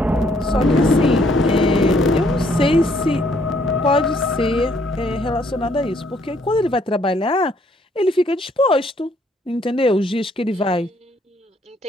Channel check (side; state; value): both; normal; correlation 0.67